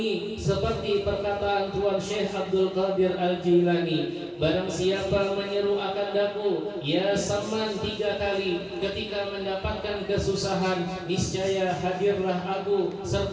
seperti perkataan Tuan Syekh Abdul Qadir Al-Jilani. Barang siapa menyeru akan daku, ya Saman 3 kali, ketika mendapatkan kesusahan, niscaya hadirlah aku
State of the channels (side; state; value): both; identical; correlation 1.00